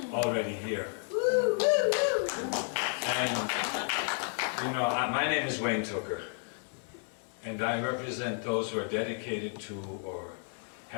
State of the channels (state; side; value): silent; right; 55 dB below the other